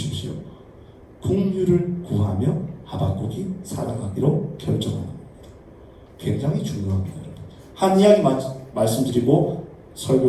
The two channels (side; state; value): both; identical; correlation 1.00